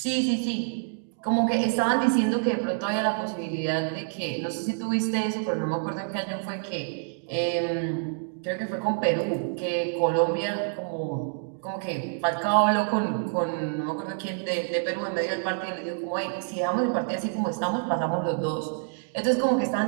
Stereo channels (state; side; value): silent; left; digital silence